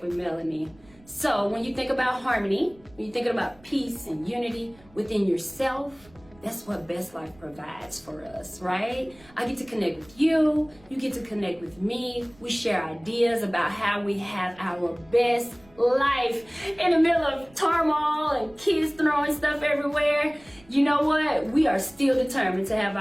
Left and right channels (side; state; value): right; noise; rumble, 27 dB below the sound